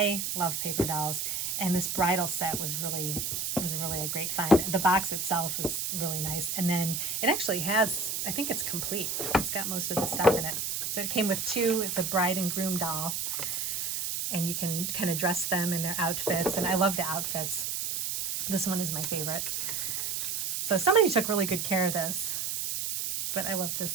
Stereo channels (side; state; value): right; noise; hiss, 2 dB below the sound